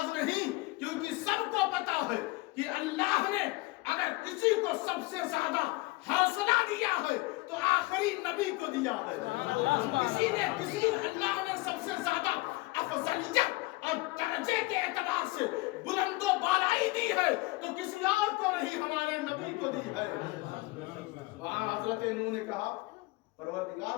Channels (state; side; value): quieter; right; 21.9 dB